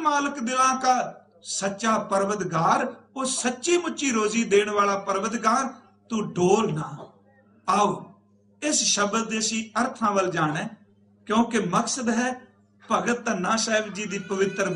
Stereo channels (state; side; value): identical; both; correlation 1.00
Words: मालक दिला का सच्चा परवतगार। वो सच्ची मुच्ची रोजी देने वाला परवतगार। तू डोल ना। आओ इस शब्द देसी अर्थां वल जाना, क्योंकि मकसद है भगत धन्ना साहिब जी की पवित्र